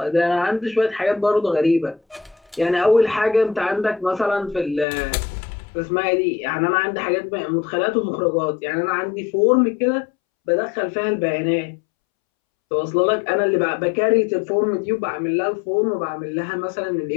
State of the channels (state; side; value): drops out; right; at 4.9 s